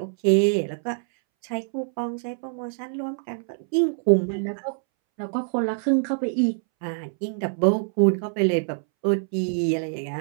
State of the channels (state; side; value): silent; left; 62 dB below the other